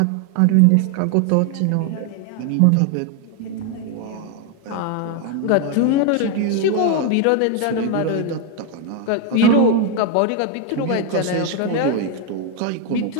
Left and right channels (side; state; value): both; different; correlation 0.01